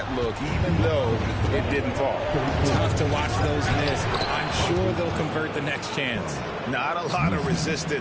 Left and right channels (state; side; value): identical; both; correlation 1.00